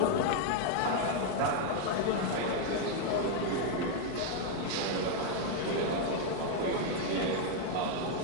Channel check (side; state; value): both; different; correlation 0.00